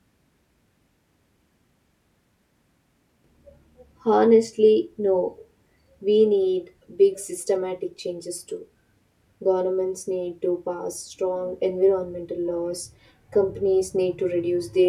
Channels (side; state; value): both; identical; correlation 1.00